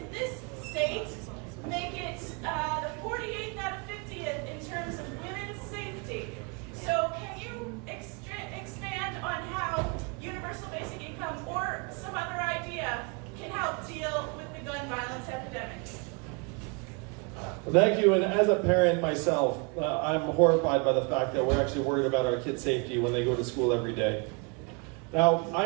this state make it the 48th out of 50th in terms of women's safety. So can you expand on how universal basic income or some other idea can help deal with the gun violence epidemic? Well, thank you, and as a parent myself, I'm horrified by the fact that we're actually worried about our kids' safety when they go to school every day. Now,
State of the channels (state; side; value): quieter; left; 32.1 dB